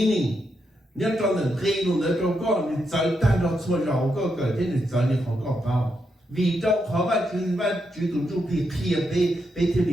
Nếu cho nên khi luôn nữa cho con thì tới ta đó xua rau có cỡ thế thì tới thì họ có bao vì trong khó và chú tụi chú thì kia bê thế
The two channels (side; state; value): both; normal; correlation 0.82